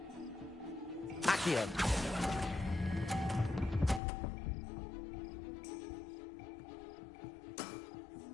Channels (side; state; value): right; drops out; at 4.0 s